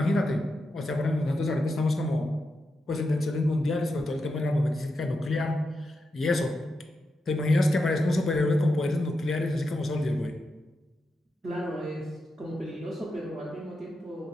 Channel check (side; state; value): both; normal; correlation 0.87